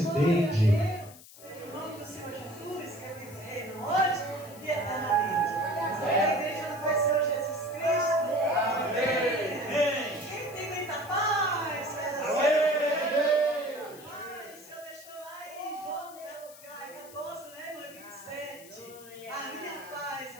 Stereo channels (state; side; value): noise; left; hiss, 19 dB below the sound